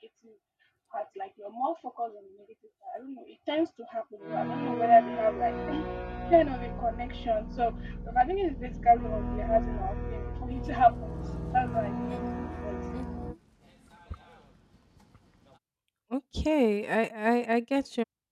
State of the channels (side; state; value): both; identical; correlation 1.00